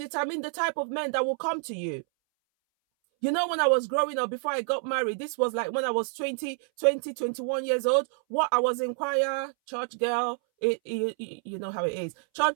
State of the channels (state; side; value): silent; left; 59 dB below the other